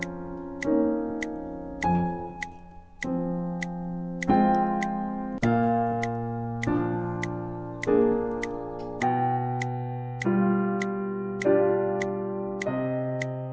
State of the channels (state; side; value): identical; both; correlation 1.00